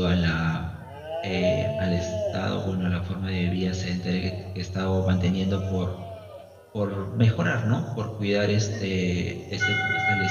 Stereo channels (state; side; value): identical; both; correlation 1.00